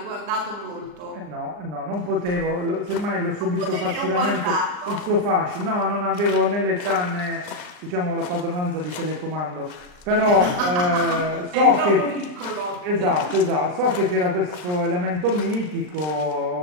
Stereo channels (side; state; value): left; late; 40 ms